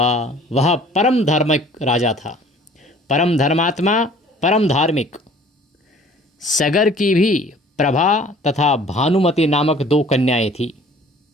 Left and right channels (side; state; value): both; normal; correlation 0.51